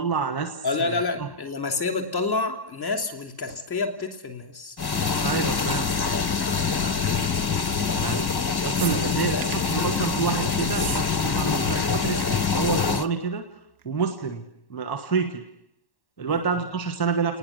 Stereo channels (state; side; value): late; right; 1.1 ms